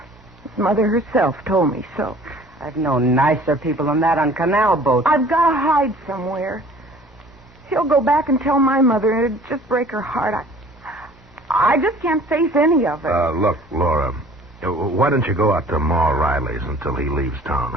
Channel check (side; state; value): both; normal; correlation 0.50